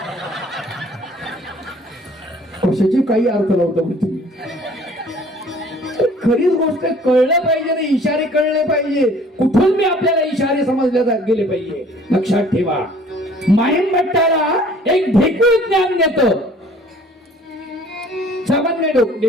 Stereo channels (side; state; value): both; normal; correlation 0.54